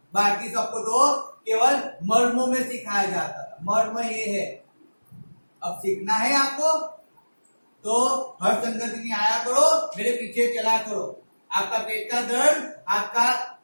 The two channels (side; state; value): both; inverted; correlation -1.00